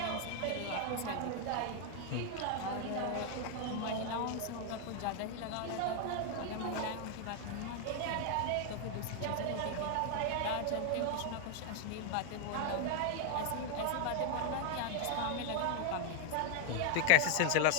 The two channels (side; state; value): both; different; correlation 0.00